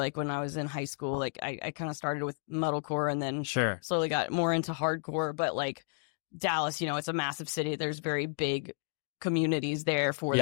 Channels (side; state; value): right; silent; digital silence